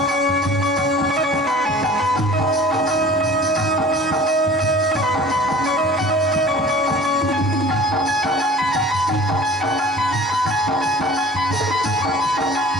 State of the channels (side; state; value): both; normal; correlation 0.44